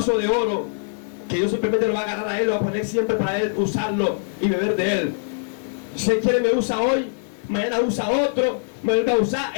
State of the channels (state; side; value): silent; right; 64 dB below the other